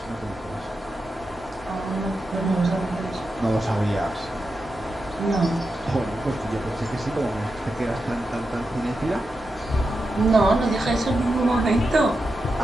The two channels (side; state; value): both; normal; correlation 0.88